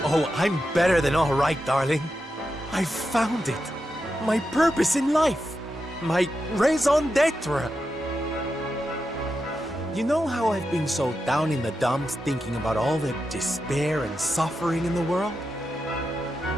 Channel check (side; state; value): both; normal; correlation 0.88